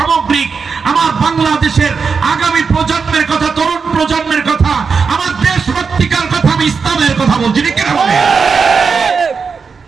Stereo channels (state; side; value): quieter; left; 5.4 dB